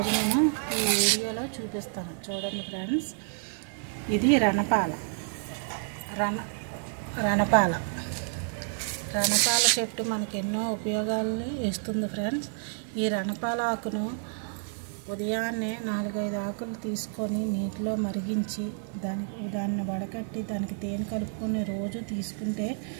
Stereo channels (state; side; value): silent; left; digital silence